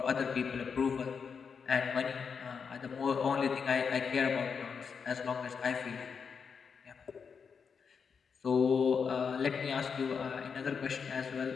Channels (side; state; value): right; quieter; 6.1 dB